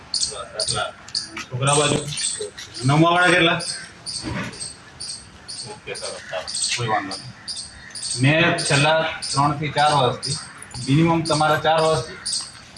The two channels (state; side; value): identical; both; correlation 1.00